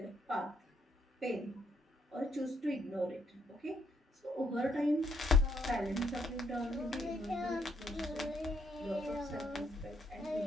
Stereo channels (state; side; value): normal; both; correlation 0.73